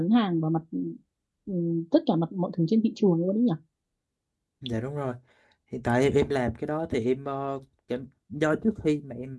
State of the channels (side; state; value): both; identical; correlation 1.00